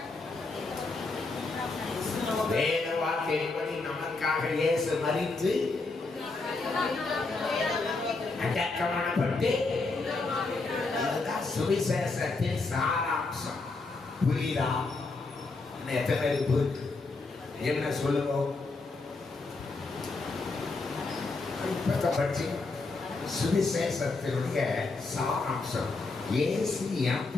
வேத வாக்கியப்படி நமக்காக இயேசு மரித்து அடக்கமானப்பட்டு சுவிசேஷத்தின் சாராம்சம். புரியுதா? எத்தனை பேருக்கு புரியுது? என்ன சொல்லுங்க. சுவிசேஷத்தினுடைய சாராம்சம் இயேசு என்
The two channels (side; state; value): right; quieter; 3.7 dB